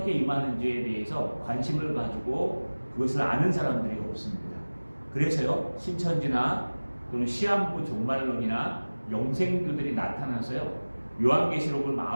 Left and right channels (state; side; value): inverted; both; correlation -1.00